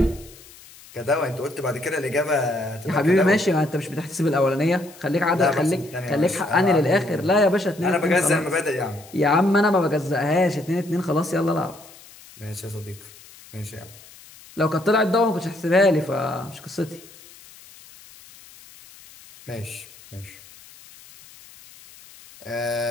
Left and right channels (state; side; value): noise; left; hiss, 22 dB below the sound